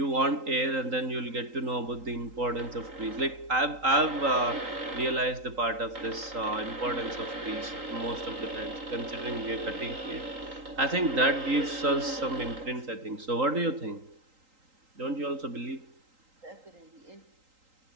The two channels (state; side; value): late; left; 3.8 ms